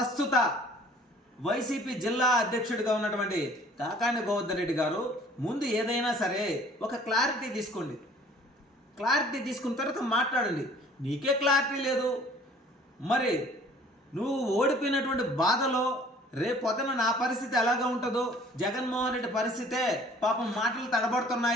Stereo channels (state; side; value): normal; both; correlation 0.53